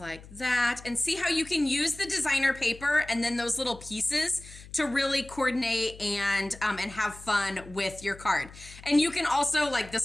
that. And see how you can use the designer paper and then those little pieces to really coordinate and have fun with your card. And you can also,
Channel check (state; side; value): noise; left; hum, 18 dB below the sound